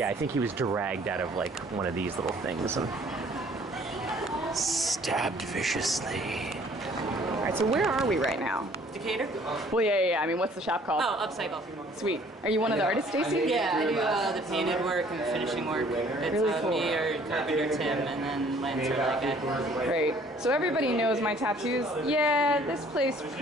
I think he was dragged out of like one of these little things and stabbed viciously. All right, so where are we right now? Decatur? Well, yeah. I mean, what's the shop called? Oh, Upcycle. Sweet. Are you one of the artists, Stacy? Yeah, I do the painted work and the finishing work. It's Really cool. me or Carpenter Tim and then Lancer like I. Great. So everybody knows my tattoos. Yeah, this place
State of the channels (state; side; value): normal; both; correlation 0.57